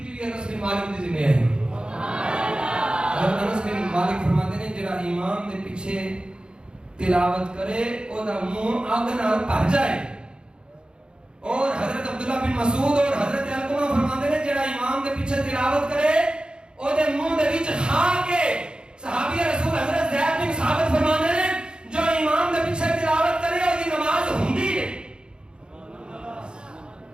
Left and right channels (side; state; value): left; late; 0.050 ms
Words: بھی انس بن مالک دی ذمہ ہے۔ حضرت انس بن مالک فرماتے ہیں جڑا امام دے پیچھے تلاوت کرے او دا منہ اگ نال بھر جائے، اور حضرت عبداللہ بن مسعود اور حضرت علقمہ فرماتے ہیں جڑا امام دے پیچھے تلاوت کرے او دے منہ دے وچ کھا کے، صحابی رسول حضرت زید بن ثابت فرماتے ہیں جو امام دے پیچھے تلاوت کرے او دی نماز ہوندی ہے۔